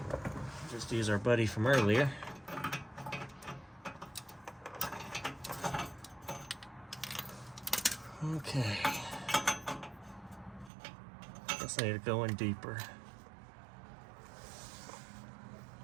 Just use our buddy from earlier. Okay. Guess I need to go in deeper.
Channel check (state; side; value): drops out; left; at 10.7 s